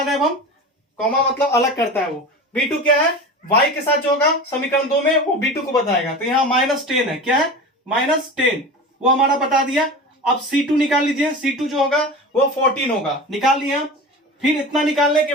रहे हैं हम, कॉमा मतलब अलग करता है वो। B2 क्या है? y के साथ जो होगा समीकरण 2 में वो B2 को बताएगा, तो यहाँ -10 है। क्या है? -10, वो हमारा बता दिया। अब C2 निकाल लीजिए, C2 जो होगा वो 14 होगा, निकाल लिया। फिर इतना निकालने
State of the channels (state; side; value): normal; both; correlation 0.31